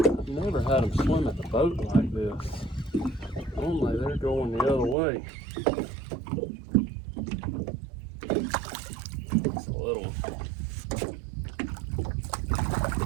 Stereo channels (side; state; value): left; drops out; at 5.0 s